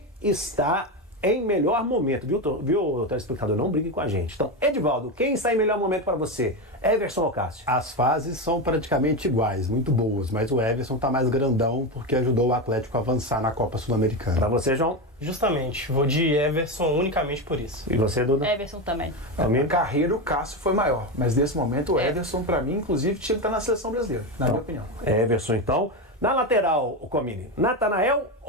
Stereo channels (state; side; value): normal; both; correlation 0.15